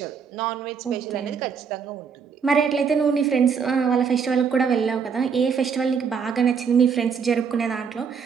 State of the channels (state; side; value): quieter; left; 6.3 dB